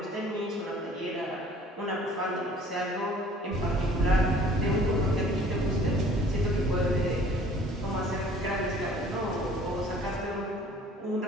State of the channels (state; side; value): normal; both; correlation 0.53